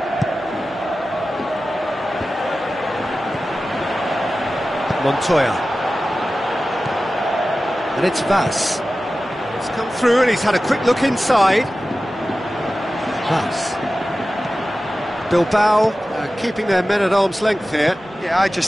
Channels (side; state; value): both; normal; correlation 0.95